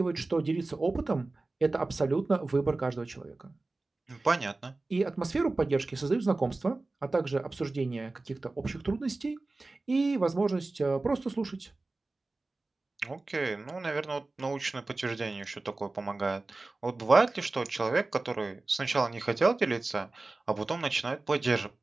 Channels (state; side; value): quieter; left; 3.3 dB